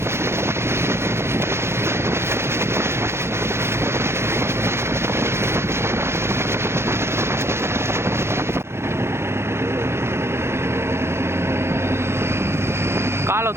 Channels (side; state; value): left; late; 0.12 ms